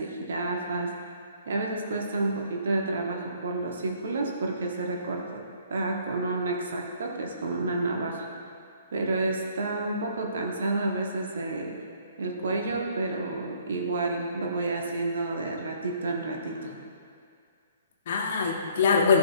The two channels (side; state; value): both; inverted; correlation -0.61